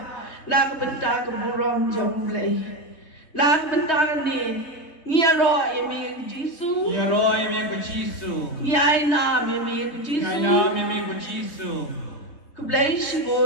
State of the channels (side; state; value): right; late; 3.2 ms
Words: la benta ke buram jom lei la benta ni ngiro yemi Jisu ngiro yemi ko Jisu yaina yemi ko Jisu yaina yemi ko Jisu ku blai